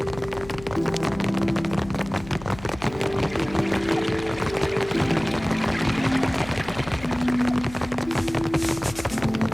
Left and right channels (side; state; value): left; noise; hum, 16 dB below the sound